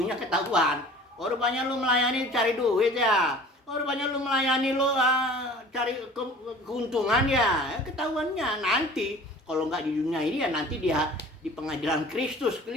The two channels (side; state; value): both; normal; correlation 0.45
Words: ketahuan. Rupanya lu melayani cari duit ya, rupanya lu melayani lu cari keuntungan ya, ketahuannya nanti. Kalau nggak di dunia ini ya nanti dia di pengadilan Kristus